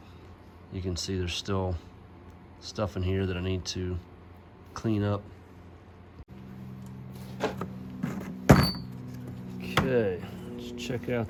You can see there's still stuff in here that I need to clean up. Okay, let's check out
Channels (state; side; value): identical; both; correlation 1.00